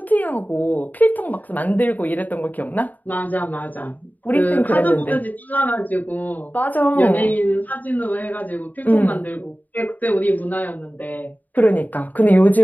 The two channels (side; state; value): right; late; 0.082 ms